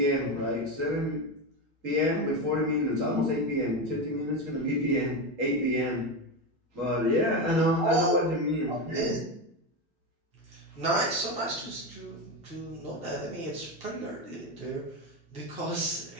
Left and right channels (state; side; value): normal; both; correlation 0.15